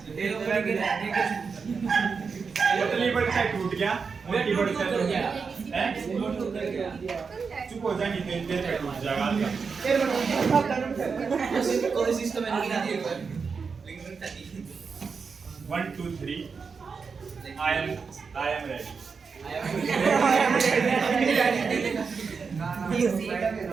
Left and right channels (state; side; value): quieter; left; 5.3 dB